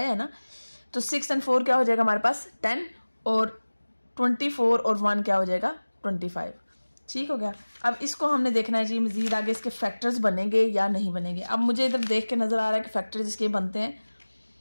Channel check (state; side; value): inverted; both; correlation -1.00